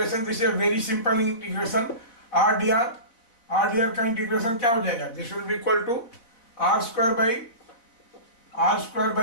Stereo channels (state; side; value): late; right; 4.1 ms